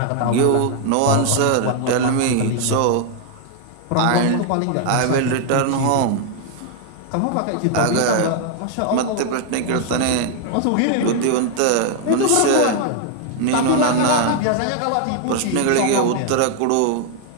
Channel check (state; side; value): different; both; correlation 0.00